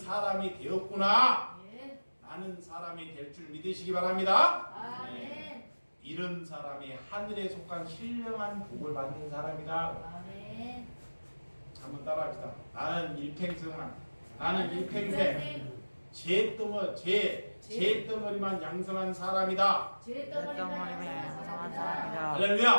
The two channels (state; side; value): inverted; both; correlation -1.00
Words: 되었구나. 나는 사람이 될 줄 믿으시기 바랍니다. 네. 이런 사람이 하늘에 속한 신령한 복을 받는 사람이다. 한번 따라합시다. 나는 일평생 죄덩어리만 양성한 사람이다. 죄덩어리만 양성한 사람이다.